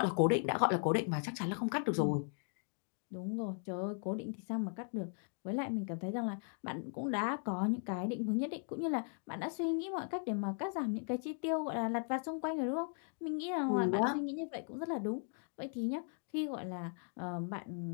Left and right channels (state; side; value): silent; right; 53 dB below the other